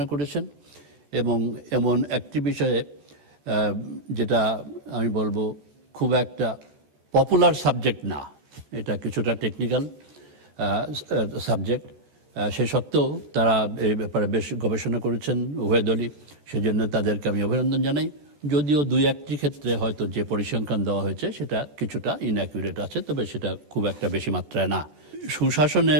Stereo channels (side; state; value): left; late; 14 ms